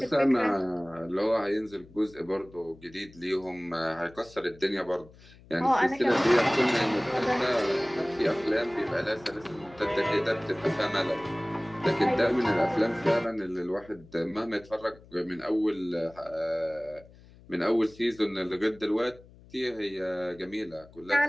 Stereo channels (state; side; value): noise; left; hum, 23 dB below the sound